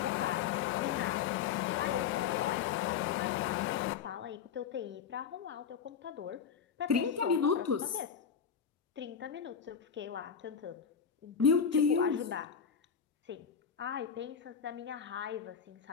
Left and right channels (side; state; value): right; quieter; 7.2 dB